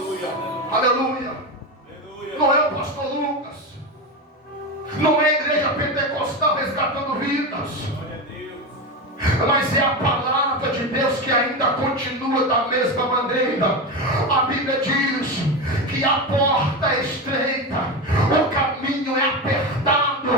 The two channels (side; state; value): both; normal; correlation 0.18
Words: Aleluia. Não é o pastor Lucas, não é a igreja pentecostal resgatando vidas, Glória a Deus. mas é a palavra de Deus que ainda continua da mesma maneira. A Bíblia diz que a porta é estreita, o caminho é